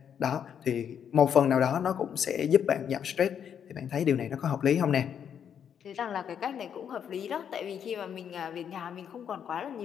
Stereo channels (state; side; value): quieter; right; 8.3 dB